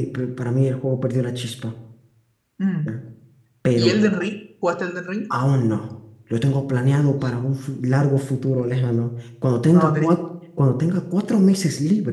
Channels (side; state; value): both; identical; correlation 1.00